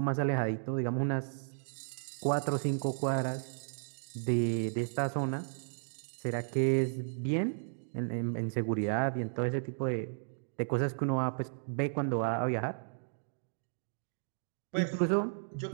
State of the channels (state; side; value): silent; left; digital silence